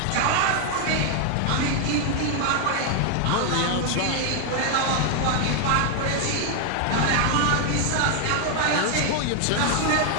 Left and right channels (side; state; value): both; different; correlation 0.00